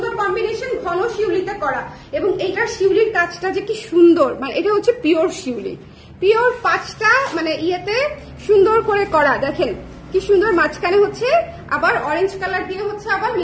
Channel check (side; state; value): both; identical; correlation 1.00